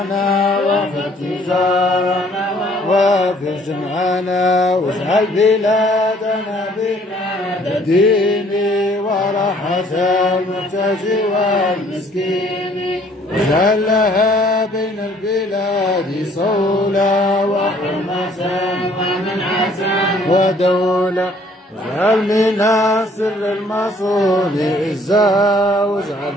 واحفظ تجارنا واغفر جمعنا واجعل بلادنا بلاد الدين وراحة المحتاج والمسكين. واجعل لها بين البلاد صولة وحرمة ومنعة ودولة. واجعل منا سر المصون عزها واجعل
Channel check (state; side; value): normal; both; correlation 0.60